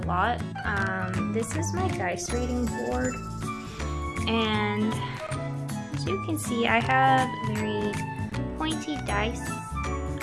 This is my dice reading board, and as you can see I have very pointy dice.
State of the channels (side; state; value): both; identical; correlation 1.00